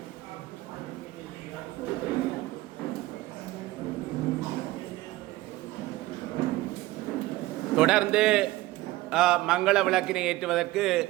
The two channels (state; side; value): quieter; left; 17.9 dB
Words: தொடர்ந்து மங்கள விளக்கினை ஏற்றுவதற்கு